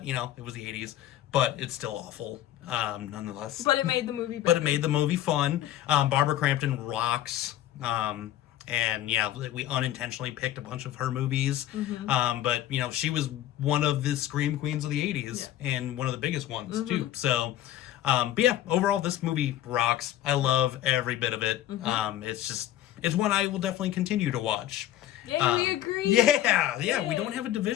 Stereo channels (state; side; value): quieter; right; 12.9 dB